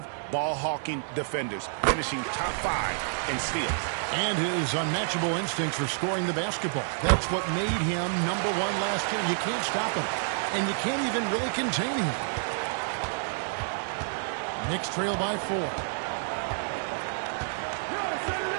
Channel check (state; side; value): silent; left; digital silence